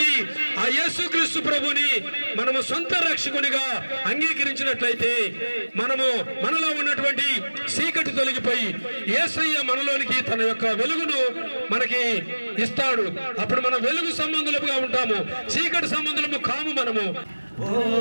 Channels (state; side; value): inverted; both; correlation -1.00